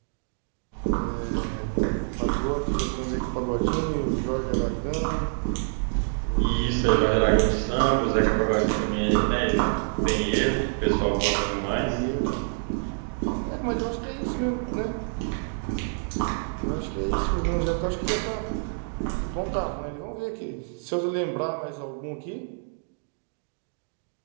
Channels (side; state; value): left; silent; 60 dB below the other